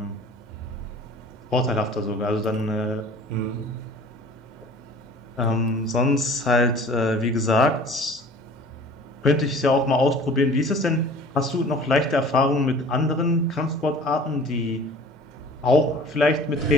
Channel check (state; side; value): normal; both; correlation 0.45